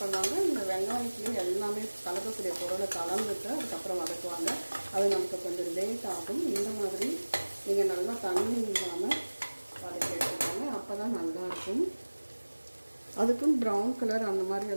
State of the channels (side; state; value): both; inverted; correlation -1.00